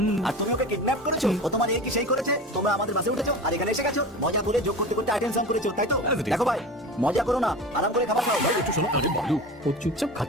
আর তুমি ওকে কিডন্যাপ করেছো। ও তোমার এই কি সেই করেছে? তোমরা আমাদের বাসে উঠেছো আর এখানে এসে গেছো। মজা করে যোগ করতে করতে আইটেম সং করেছো, তাই তো? As it is. দেখো ভাই, মজা করো না, আরাম করে খাবার খাও। ভাই একটু শোনো। আরে বালু, ও চুপচাপ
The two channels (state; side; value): normal; both; correlation 0.32